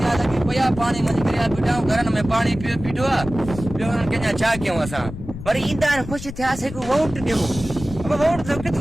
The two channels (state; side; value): noise; left; rumble, 11 dB below the sound